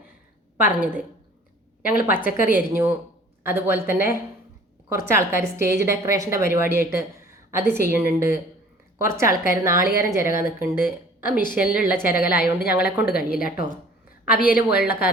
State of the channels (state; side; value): normal; both; correlation 0.50